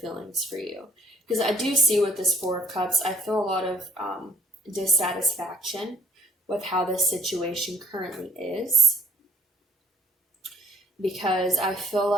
for you. Because I do see with this Four of Cups, I feel a lot of dissatisfaction with how this situation currently is. Because I feel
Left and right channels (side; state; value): both; normal; correlation 0.57